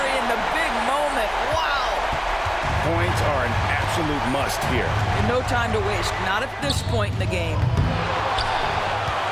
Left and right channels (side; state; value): both; identical; correlation 1.00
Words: in the big moment. Wow! Points are an absolute must here. And no time to waste. Not at this point in the game.